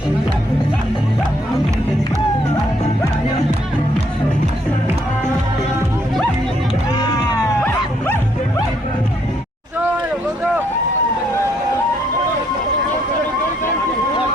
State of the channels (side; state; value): both; normal; correlation 0.70